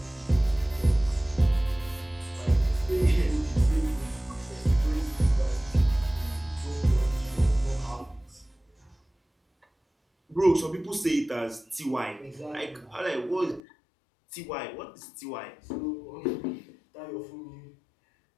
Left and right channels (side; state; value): right; drops out; at 13.6 s